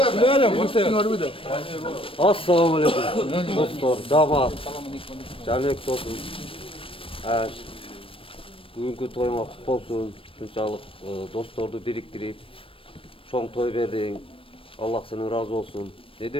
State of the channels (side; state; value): right; late; 0.26 ms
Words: Assalamu alaikum dostlar, damat, Canbek dostum. Bugünkü toyuma kutlu olsun. Şunçalık dostlardı biriktirip çoğun toy verdin. Allah senin razı olsun. Ne